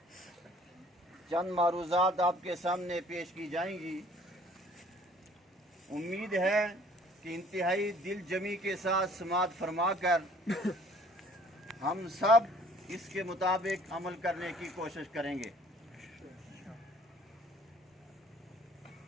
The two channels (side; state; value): both; normal; correlation 0.55